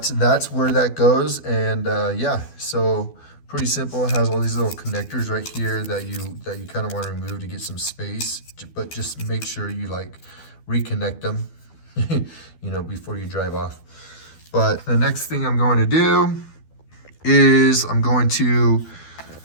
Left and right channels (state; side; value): late; right; 12 ms